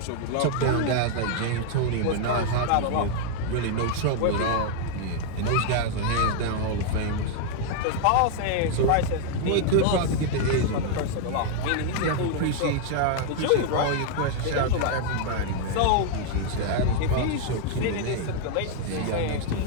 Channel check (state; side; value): different; both; correlation 0.00